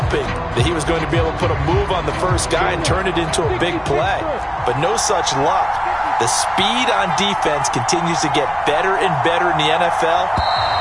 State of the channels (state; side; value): identical; both; correlation 1.00